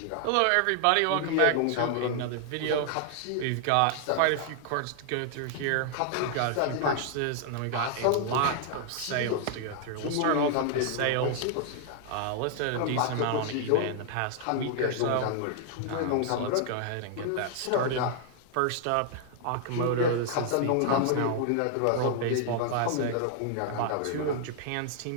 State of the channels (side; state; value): both; different; correlation 0.00